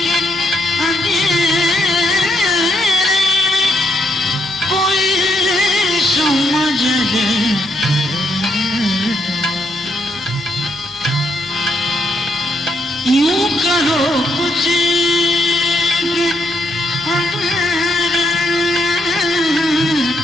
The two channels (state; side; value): noise; left; hum, 29 dB below the sound